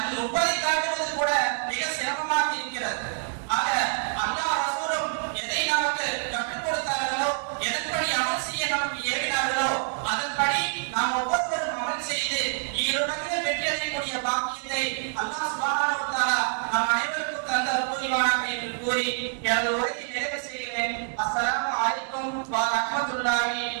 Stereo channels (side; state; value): left; silent; digital silence